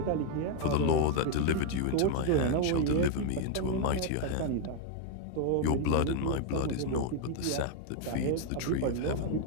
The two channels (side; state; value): both; different; correlation 0.01